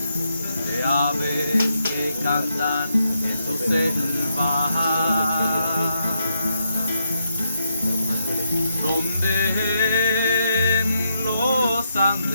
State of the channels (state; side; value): inverted; both; correlation -0.80